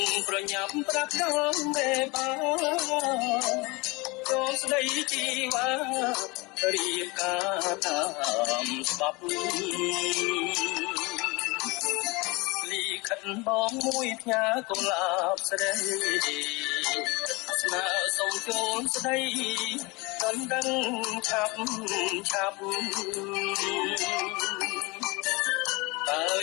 ប្រញាប់ប្រាប់ដល់មេបាចូលស្ដីជីវ៉ារៀបការតាមច្បាប់លីខិនបងមួយផ្ញើកុលាបស្រីស្នើសុំចូលស្ដីមិនដឹងឆាប់តើ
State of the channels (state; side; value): quieter; right; 25.5 dB